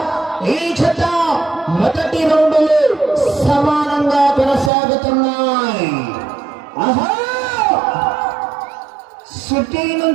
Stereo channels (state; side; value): drops out; left; at 4.7 s